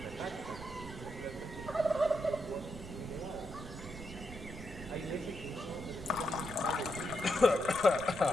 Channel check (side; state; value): right; noise; rumble, 12 dB below the sound